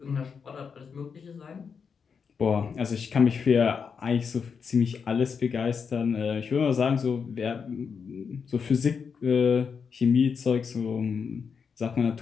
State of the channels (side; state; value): right; quieter; 6.1 dB